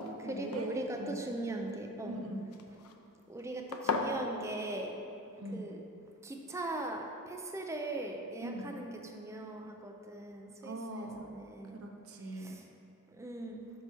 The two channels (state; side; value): normal; both; correlation 0.34